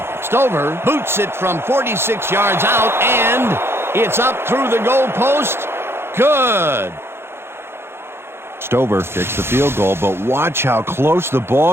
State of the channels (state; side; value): late; left; 0.12 ms